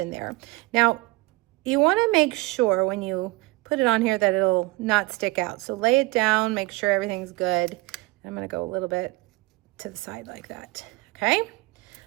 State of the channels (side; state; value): left; quieter; 22.9 dB